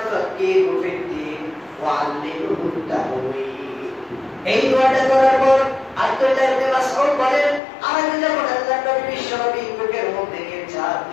ফাক্কিহু ফিদ্দীন ওয়া আল্লিমহু তা'ওয়ীল। এই দোয়াটা করার পর আব্দুল্লাহ ইবনে মাসউদ বলেন, আমি যখন আল্লাহর নবী বিশ্বনবী বুকের মধ্যে নিয়ে চাপ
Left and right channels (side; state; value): right; drops out; at 7.6 s